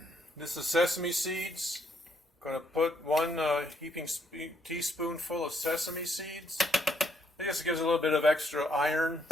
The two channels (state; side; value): normal; both; correlation 0.72